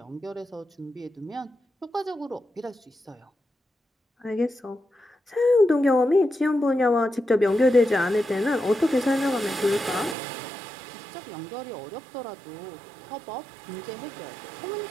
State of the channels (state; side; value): drops out; left; at 10.2 s